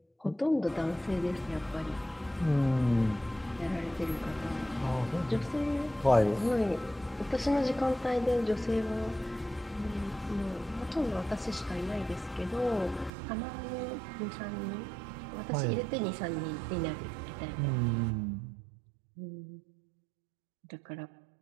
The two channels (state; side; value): drops out; left; at 13.1 s